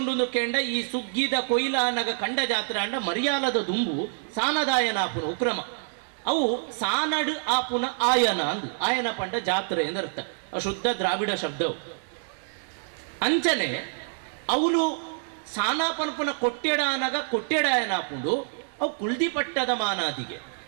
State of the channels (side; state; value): left; silent; digital silence